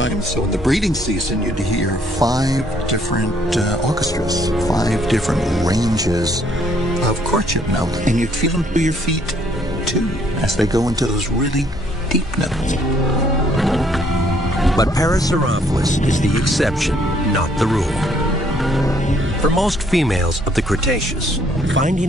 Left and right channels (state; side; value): normal; both; correlation 0.65